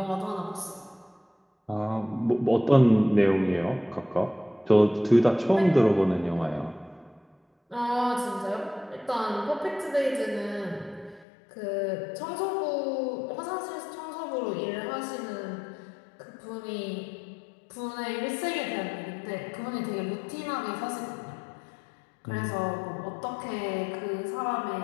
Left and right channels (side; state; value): right; drops out; at 11.2 s